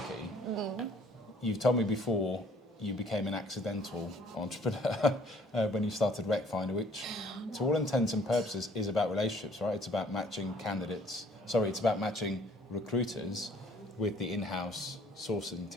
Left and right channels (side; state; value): both; normal; correlation 0.58